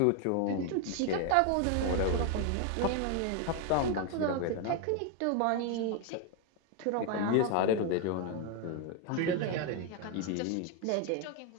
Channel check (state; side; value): different; both; correlation 0.01